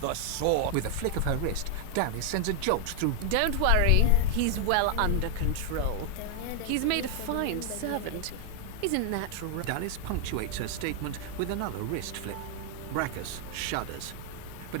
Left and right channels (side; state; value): both; different; correlation 0.00